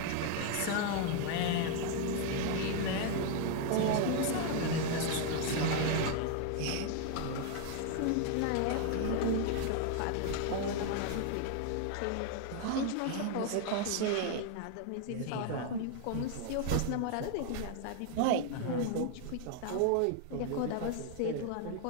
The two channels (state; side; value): different; both; correlation 0.00